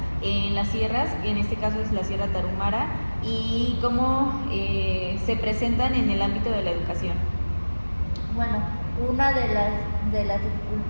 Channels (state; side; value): inverted; both; correlation -1.00